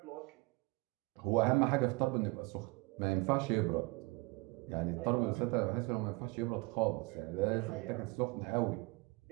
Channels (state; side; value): quieter; left; 25.8 dB